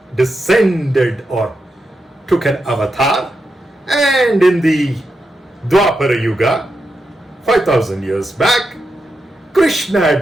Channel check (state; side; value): normal; both; correlation 0.87